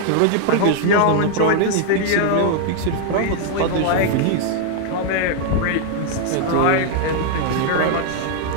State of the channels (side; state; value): both; different; correlation 0.00